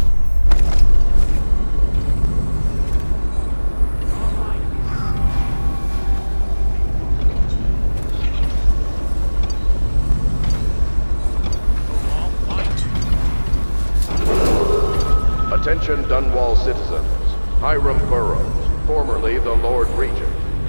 Attention Dunwall citizens. Hiram Burroughs, formerly the Lord Regent,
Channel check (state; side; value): inverted; both; correlation -1.00